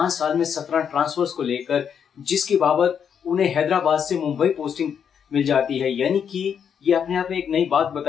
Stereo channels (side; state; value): right; quieter; 7.7 dB